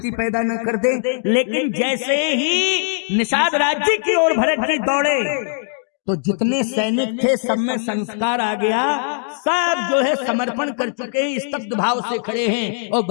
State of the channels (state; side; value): silent; right; digital silence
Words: पैदा न कर दे। लेकिन जैसे ही निषाद राज जी की ओर भरत जी दौड़े तो जितने सैनिक थे सब में संस्कार आ गया, सब जो है समर्पण कर चुके हैं, स्तब्ध भाव से खड़े हैं। और